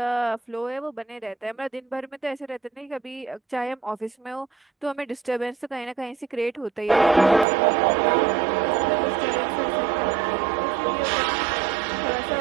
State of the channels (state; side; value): drops out; left; at 7.5 s